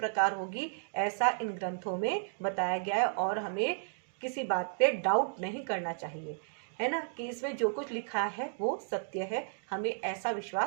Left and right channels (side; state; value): left; silent; digital silence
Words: होगी ऐसा इन ग्रंथों में बताया गया है, और हमें किसी बात पे डाउट नहीं करना चाहिए, है ना, कि इसमें जो कुछ लिखा है वो सत्य है। हमें ऐसा